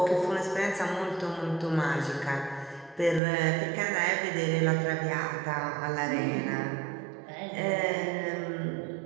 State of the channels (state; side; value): drops out; left; at 3.2 s